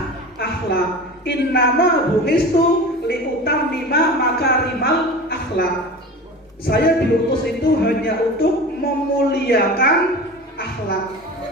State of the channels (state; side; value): normal; both; correlation 0.34